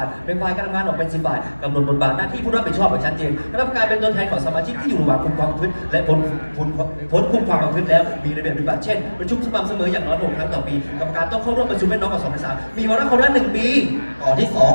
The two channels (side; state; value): both; inverted; correlation -1.00